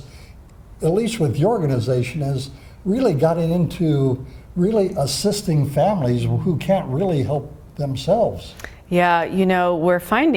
at least with your organization, has really gotten into really assisting families who can't really help themselves. Yeah, you know, we're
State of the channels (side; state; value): both; identical; correlation 1.00